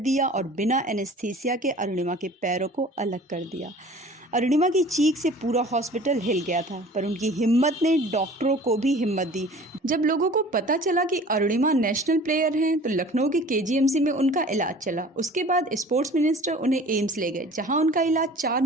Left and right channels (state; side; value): normal; both; correlation 0.46